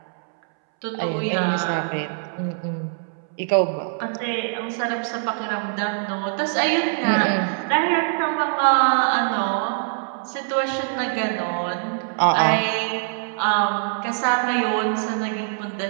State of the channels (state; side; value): silent; left; 63 dB below the other